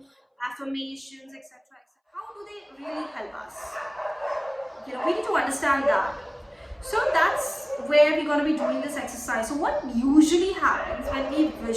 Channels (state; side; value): identical; both; correlation 1.00